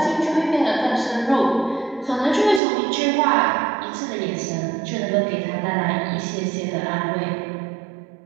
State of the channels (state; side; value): drops out; left; at 2.6 s